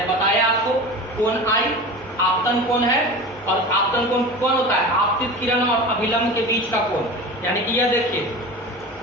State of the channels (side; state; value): both; normal; correlation 0.32